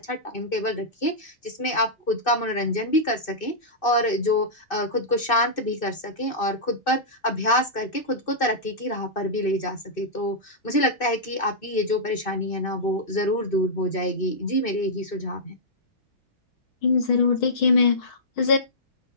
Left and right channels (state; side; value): late; right; 2.6 ms